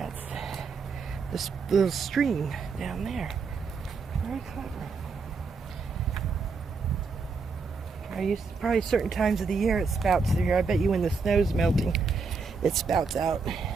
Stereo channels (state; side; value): quieter; left; 4.7 dB